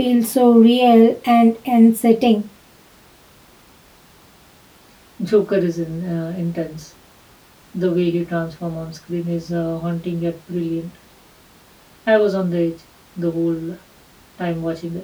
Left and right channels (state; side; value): identical; both; correlation 1.00